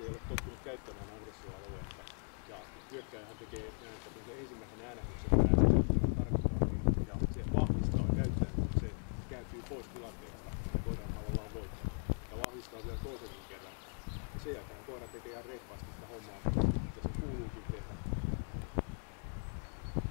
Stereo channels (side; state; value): right; quieter; 38.1 dB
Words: ei ole tottunut käyttämään aggressioaluetta. Ja hyökkääjähän tekee näin, että kun se ensimmäisen äänähdyksen päättää, tarkoittaa ja se vahvistaa käyttäjän, kun se kääntyy pois tilanteesta, niin koira on tavallaan voittanut. Ja vahvistaa vielä toisenkin kerran. Ja sen jälkeen koira tekee ihan reippaasti sitä hommaa, mitä sen kuuluukin tehdä.